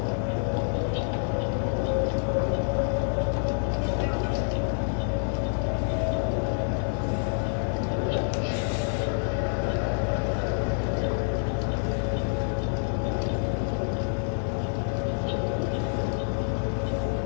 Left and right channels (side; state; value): right; silent; digital silence